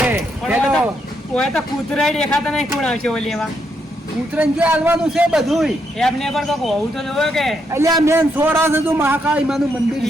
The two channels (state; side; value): normal; both; correlation 0.78